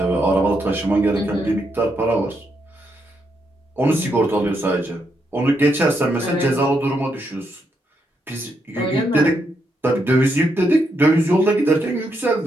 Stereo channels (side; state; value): both; normal; correlation 0.79